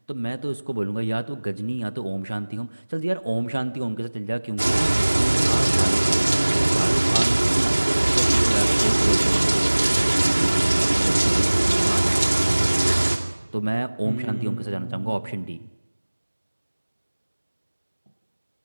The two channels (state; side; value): inverted; both; correlation -1.00